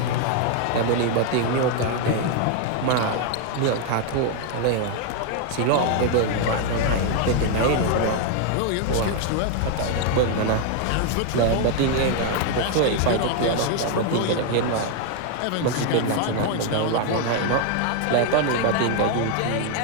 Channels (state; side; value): different; both; correlation 0.01